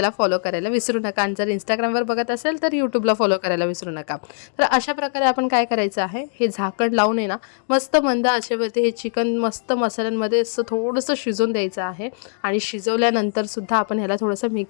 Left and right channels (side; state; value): right; silent; digital silence